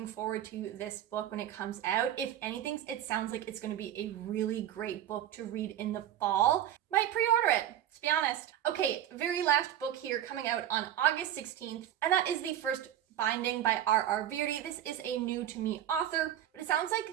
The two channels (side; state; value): left; quieter; 11.4 dB